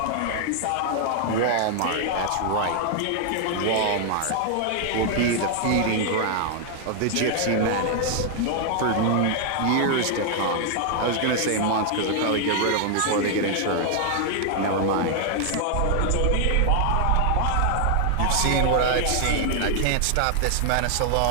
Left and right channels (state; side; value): different; both; correlation 0.00